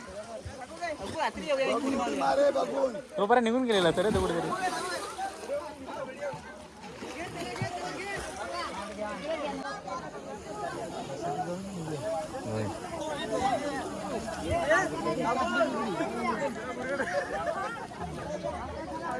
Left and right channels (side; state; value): both; identical; correlation 1.00